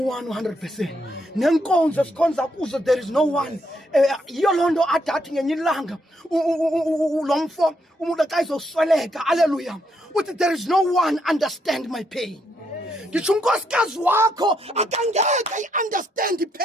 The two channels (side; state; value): both; normal; correlation 0.76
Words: 100% nenkonzo sikhonza kuzo there is no one yiyo loo nto adathi ngenye ilanga lo mfo umuntu xa izosweleka haleluya uthi there is no one understand my pain ngitsho unkosikazi wakho akangeke ayi-understand